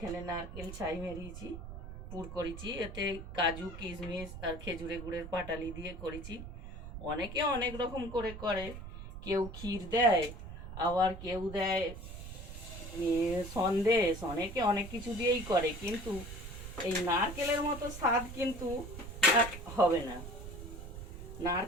নারকেল ছাই মেরিয়েছি, পুর করেছি, এতে কাজু কিশমিশ আর খেজুরে গুড়ের পাটালি দিয়ে করেছি। অনেকে অনেক রকম করে করে, কেউ ক্ষীর দেয়, আবার কেউ দেয় সন্দেশ, অনেকে অনেক কিছু দিয়েই করে, কিন্তু এই নারকেলের মতো স্বাদ কিন্তু আর হবে না।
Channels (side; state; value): right; noise; rumble, 10 dB below the sound